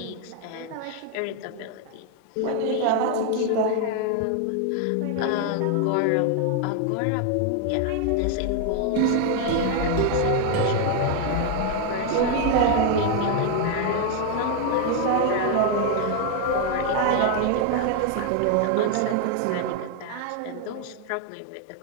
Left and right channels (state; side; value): different; both; correlation 0.00